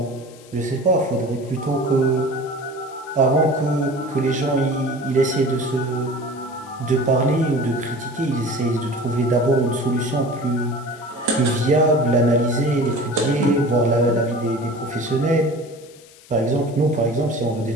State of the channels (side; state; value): left; noise; hiss, 24 dB below the sound